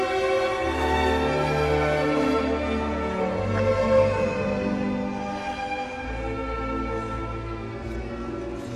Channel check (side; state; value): both; identical; correlation 1.00